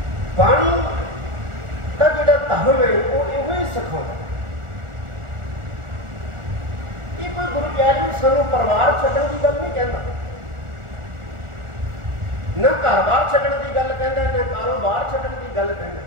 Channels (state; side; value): late; left; 1.4 ms